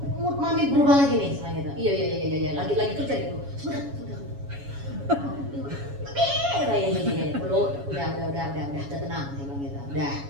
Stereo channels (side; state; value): left; late; 7.2 ms